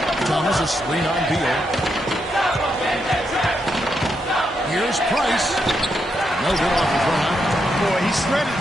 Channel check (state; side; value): normal; both; correlation 0.81